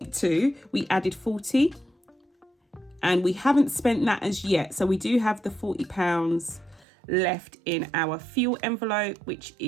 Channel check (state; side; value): drops out; left; at 6.9 s